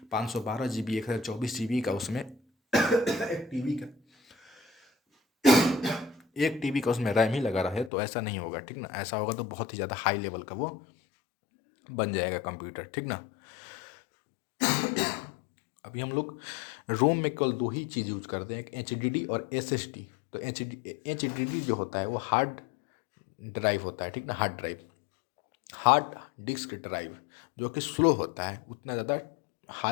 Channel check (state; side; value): drops out; right; at 7.9 s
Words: 512 GB 1024 GB का उसमें एक टीवी का एक टीवी का उसमें रैम ही लगा रहे, तो ऐसा नहीं होगा, ठीक ना। ऐसा होगा तो बहुत ही ज़्यादा हाई लेवल का वो बन जाएगा कंप्यूटर, ठीक ना। अभी हम लोग रोम में केवल दो ही चीज़ यूज करते हैं, एक HDD और SSD। तो HDD जो होता है वो हार्ड ड्राइव होता है, ठीक ना, hard drive, hard disk drive, जो कि स्लो होता है, उतना ज़्यादा